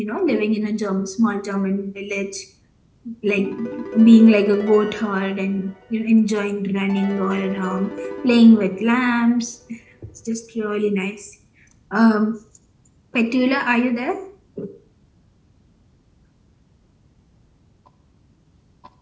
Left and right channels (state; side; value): identical; both; correlation 1.00